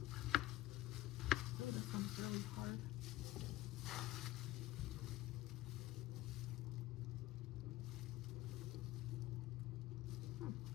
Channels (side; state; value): right; quieter; 16.1 dB